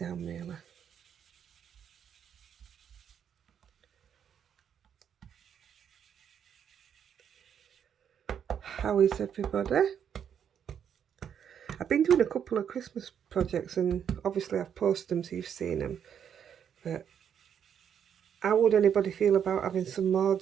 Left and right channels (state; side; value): quieter; left; 8.4 dB